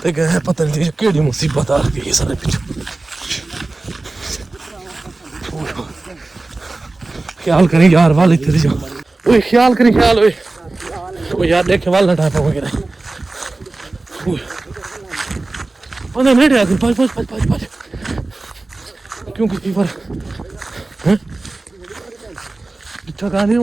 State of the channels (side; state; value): left; quieter; 3.2 dB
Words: पे गए पता नहीं केड़ी मुसीबत आ गई सारे पीछे ख्याल करें यार वाल इतने जाओ ओए ख्याल करें ख्याल ओए यार देखे वाल ना टाइप वगैरह ओए मेरे आगे पाँच क्योंकि फीवर हैं इतना गाने